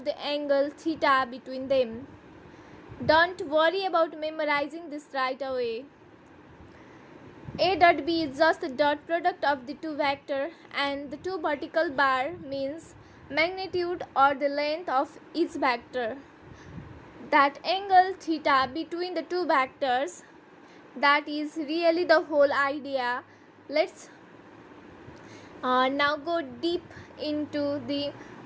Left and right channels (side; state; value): both; identical; correlation 1.00